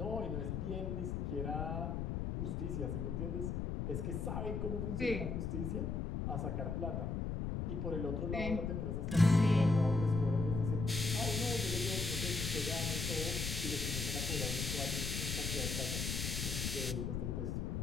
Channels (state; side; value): noise; left; rumble, 1 dB below the sound